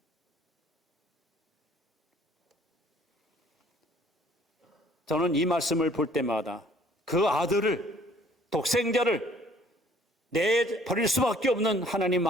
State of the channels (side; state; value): both; normal; correlation 0.58